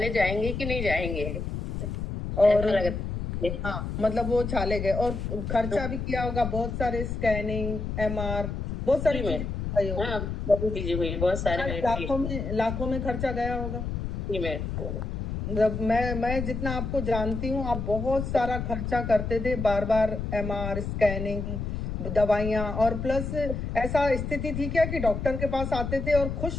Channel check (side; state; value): left; noise; rumble, 4 dB below the sound